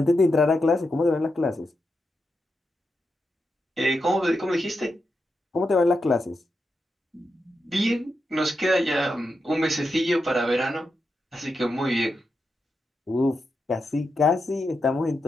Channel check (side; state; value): both; normal; correlation 0.86